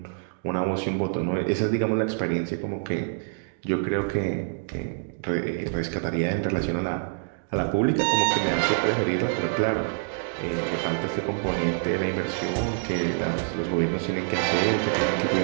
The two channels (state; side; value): silent; left; digital silence